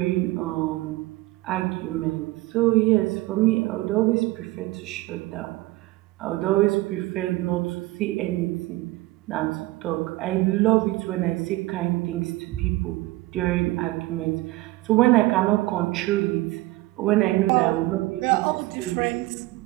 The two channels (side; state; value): left; quieter; 19.4 dB